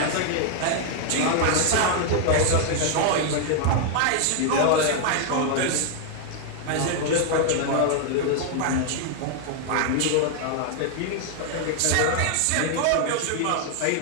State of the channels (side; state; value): both; different; correlation 0.00